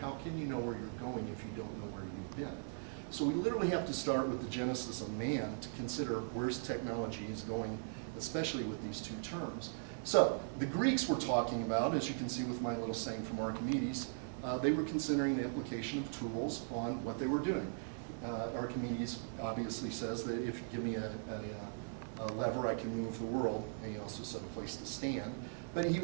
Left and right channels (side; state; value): left; silent; digital silence